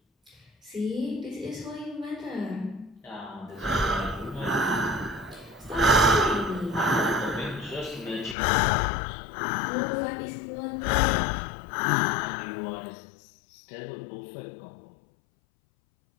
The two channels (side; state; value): right; drops out; at 8.3 s